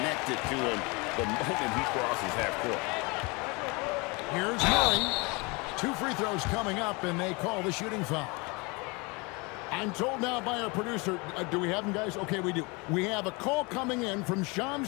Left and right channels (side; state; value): right; quieter; 27.8 dB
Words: to him the moment he crosses half court. Here's Murray. 2 free throws coming up, and they call the shooting foul. I'm told now by our producer, do we have him, guys? Okay, we do. We have a call coming in from